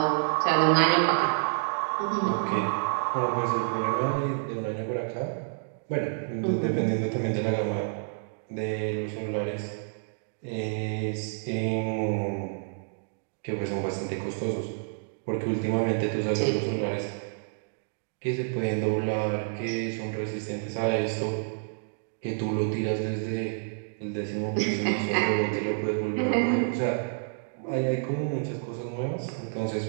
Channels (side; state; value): left; silent; digital silence